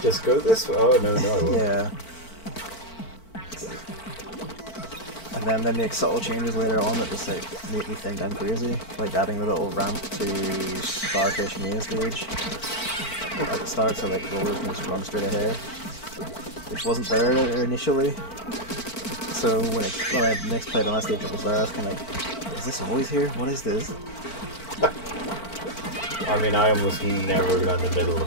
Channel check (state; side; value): late; right; 4.5 ms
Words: go this way. Oh, no, I won't. Yeah. And then they make subtle changes later on that just like make me think I'm crazy. Like adding the little ramp to Starfish Maze stage at the start, so like rollers can just run straight ahead, which wasn't there initially. So when I next played on that stage, it was there. I was kind of like, is this always here? What is this? I mean, I almost never go down the middle